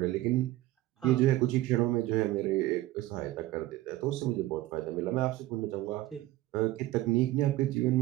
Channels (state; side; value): quieter; left; 16.5 dB